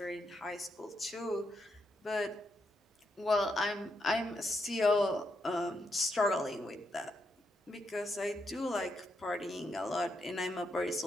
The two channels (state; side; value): normal; both; correlation 0.81